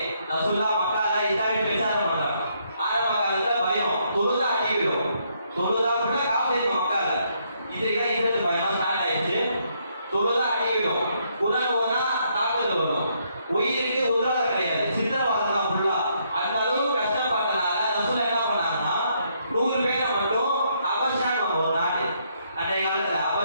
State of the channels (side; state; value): both; inverted; correlation -0.73